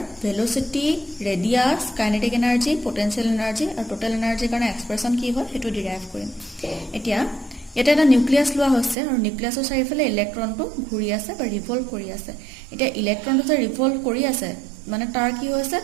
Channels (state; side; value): drops out; left; at 9.0 s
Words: velocity, radius, kinetic energy, potential energy আৰু টোটেল এনাৰ্জিৰ কাৰণে এক্সপ্ৰেছন কি হয় সেইটো ডিৰাইভ কৰিম। এতিয়া ইয়াতে এটা নিউক্লিয়াছ লোৱা হৈছে আৰু নিউক্লিয়াছৰ চাৰিওফালে ইলেক্ট্ৰনটো ঘূৰি আছে বা ৰিভলভ কৰি আছে। এতিয়া ইলেক্ট্ৰনটো যে ৰিভলভ কৰি আছে মানে তাৰ কি হৈছে,